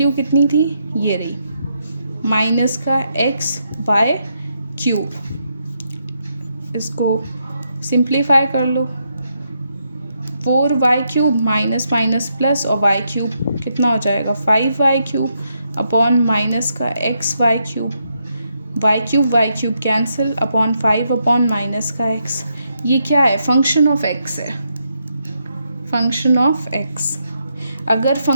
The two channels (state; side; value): inverted; both; correlation -0.80